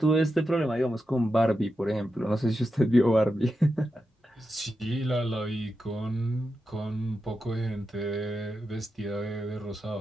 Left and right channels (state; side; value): normal; both; correlation 0.88